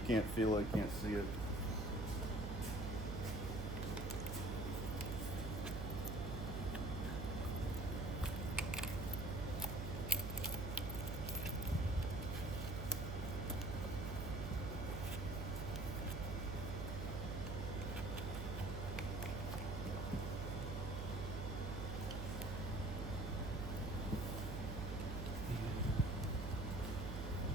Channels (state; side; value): noise; right; hum, 3 dB below the sound